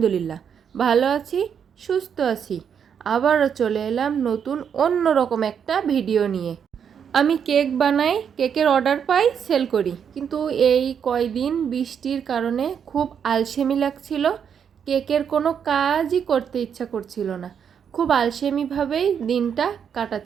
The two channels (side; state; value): left; quieter; 7.7 dB